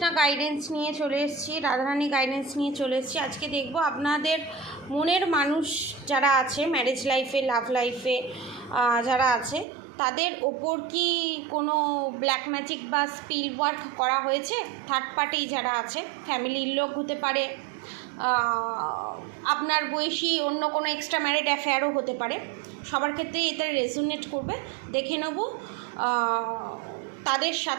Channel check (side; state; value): left; drops out; at 9.7 s